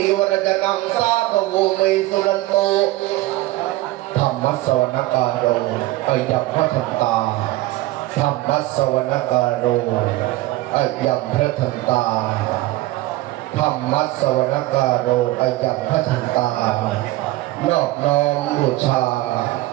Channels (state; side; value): quieter; left; 17.9 dB